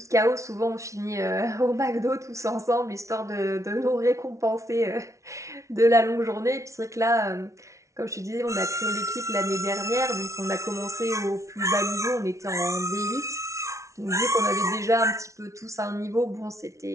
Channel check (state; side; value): late; left; 0.14 ms